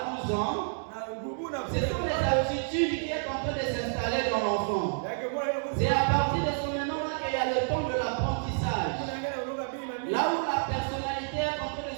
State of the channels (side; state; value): left; silent; 58 dB below the other